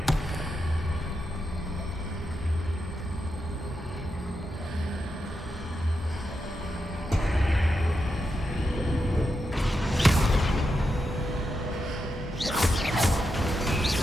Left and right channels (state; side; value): normal; both; correlation 0.86